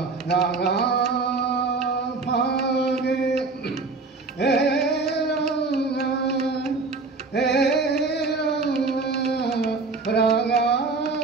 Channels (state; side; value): quieter; left; 4.0 dB